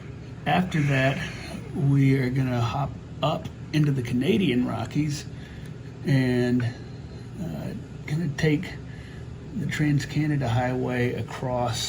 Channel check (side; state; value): both; identical; correlation 1.00